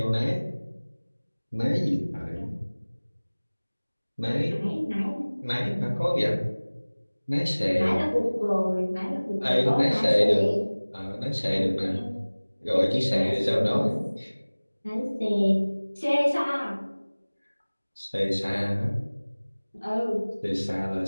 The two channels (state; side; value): inverted; both; correlation -1.00